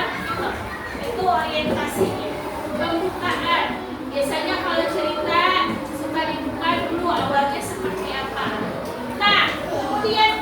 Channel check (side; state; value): both; identical; correlation 1.00